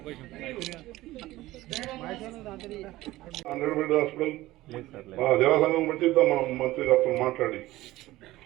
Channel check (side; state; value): left; quieter; 17.2 dB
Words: హాస్పిటల్ జలసంఘం పెట్టిద్దాం మనం మంత్రి గారితో మాట్లాడి